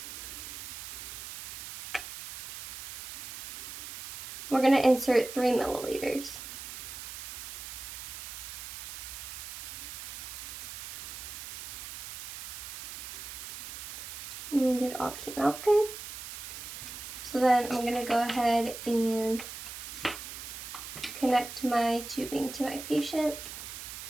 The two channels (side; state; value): right; noise; hiss, 9 dB below the sound